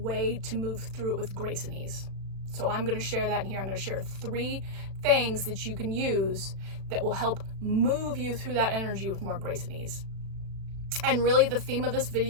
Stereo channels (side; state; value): left; late; 36 ms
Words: to move through it with grace and ease. So I'm going to share that in here. I'm going to share 3 things that you can use that will help move you through that energy with more grace and ease. And really the theme of this